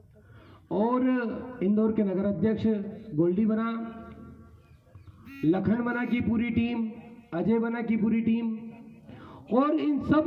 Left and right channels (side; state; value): both; identical; correlation 1.00